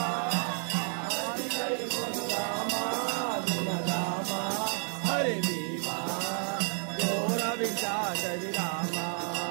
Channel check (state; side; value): silent; left; 57 dB below the other